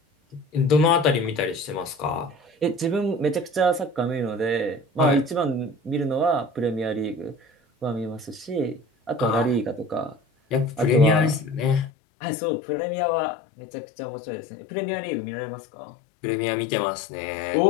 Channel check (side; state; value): right; drops out; at 11.9 s